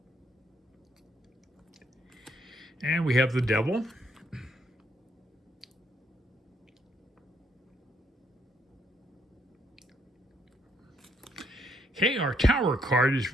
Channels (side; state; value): both; normal; correlation 0.72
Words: And we have the Devil. Okay, our Tower card is